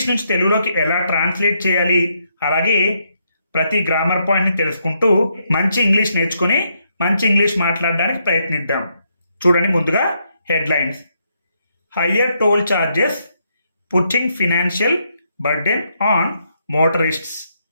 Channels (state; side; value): inverted; both; correlation -0.77